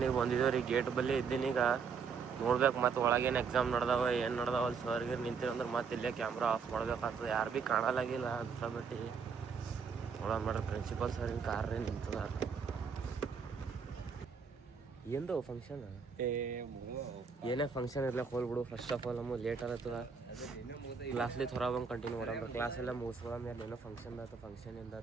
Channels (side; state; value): left; quieter; 5.8 dB